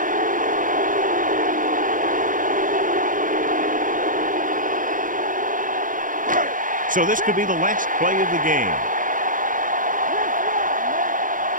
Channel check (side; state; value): left; late; 0.39 ms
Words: So this could be the last play of the game.